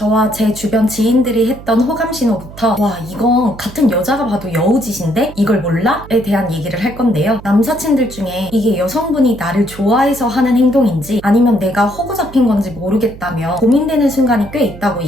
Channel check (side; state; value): right; noise; hum, 16 dB below the sound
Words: 제 주변 지인들이 했던 호감 신호부터 와, 이건 같은 여자가 봐도 여우짓인데 이걸 몰라? 에 대한 얘기를 할 건데요. 남사친들 중에 이게 여성분이 나를 좋아해서 하는 행동인지 아니면 내가 호구 잡힌 건지 모르겠다며 고민되는 순간이 꽤 있다고